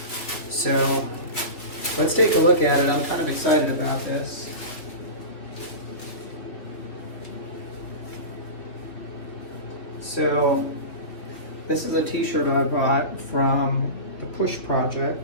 So let's take a look at it. I'm kind of excited about this. So this is a t-shirt I bought from the P.U.S.H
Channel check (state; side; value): late; right; 3.3 ms